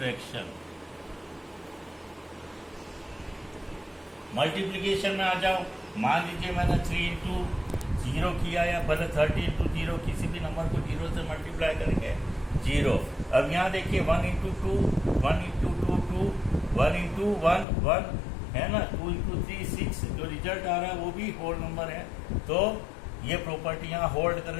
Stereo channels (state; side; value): drops out; right; at 17.7 s